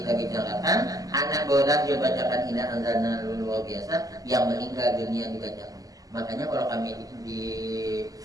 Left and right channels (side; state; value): left; late; 0.17 ms